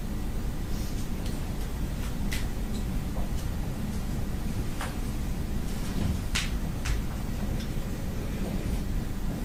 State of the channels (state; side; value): identical; both; correlation 1.00